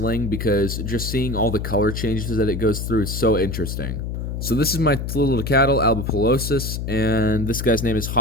because just seeing all the color changes that it goes through is so interesting. So this is my tliltocatl albipalosus, and this guy's name is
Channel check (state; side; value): noise; left; hum, 4 dB below the sound